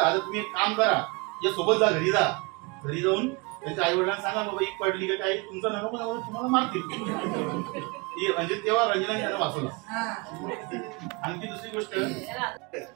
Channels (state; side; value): quieter; left; 28.0 dB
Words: आता तुम्ही एक काम करा, या सोबत जा, घरी जा. घरी जाऊन त्यांच्या आई वडिलांना सांगा बाबा एक पडली का काही तुमचा नको तुम्हाला मारतील. म्हणजे तेव्हा रंजनाने त्यांना वाचवला. आणखी दुसरी गोष्ट